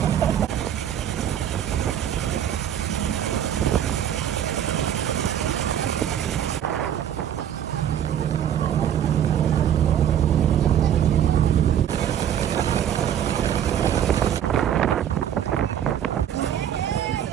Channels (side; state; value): left; quieter; 9.9 dB